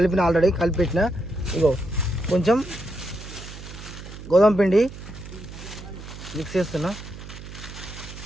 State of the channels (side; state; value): right; noise; hum, 13 dB below the sound